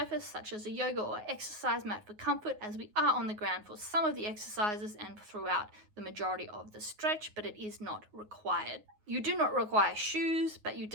such as a yoga or exercise mat for comfort, as we are on the ground for some of the exercises and throughout the majority of the stretch, but it is not required. You do not require shoes, but you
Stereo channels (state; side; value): late; left; 9.5 ms